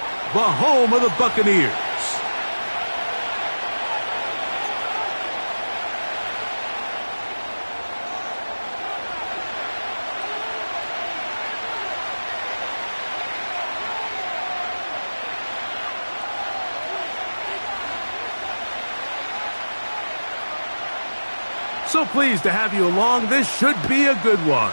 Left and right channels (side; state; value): both; inverted; correlation -1.00